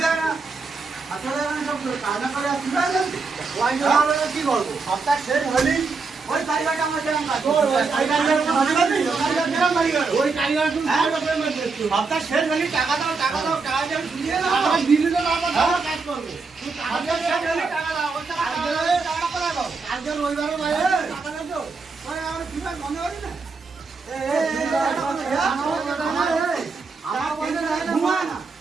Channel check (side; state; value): left; quieter; 4.4 dB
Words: না। আসলে সব কাজা করে কি করবো? সপ্তাহ শেষ হলি ওই কারিগরটা আমার যেরকম কাজ ওই কারিগর সপ্তাহ শেষ হলি টাকা দাও টাকা দাও টাকা দিয়ে শুনিয়ে দাও দিদি তো কাজ করবো টাকা দাও আজকে রবিবারে বাইরে টাকা দাও আমার কি মনে করি না